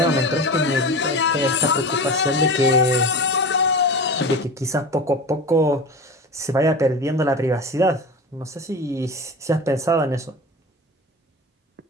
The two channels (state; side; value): normal; both; correlation 0.30